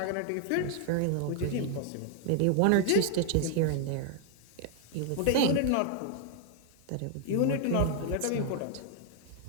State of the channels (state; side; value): different; both; correlation 0.00